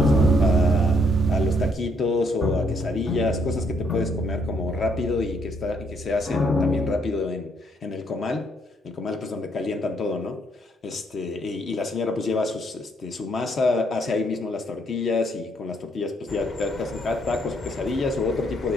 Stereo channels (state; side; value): normal; both; correlation 0.71